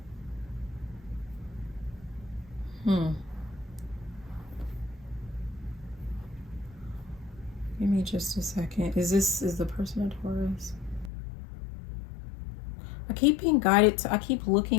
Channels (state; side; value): drops out; right; at 11.1 s